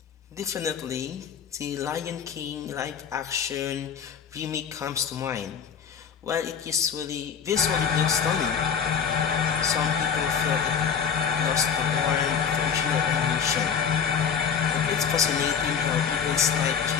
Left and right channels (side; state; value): right; quieter; 7.2 dB